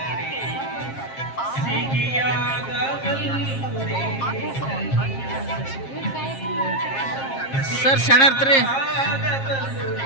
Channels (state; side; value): late; right; 7.5 ms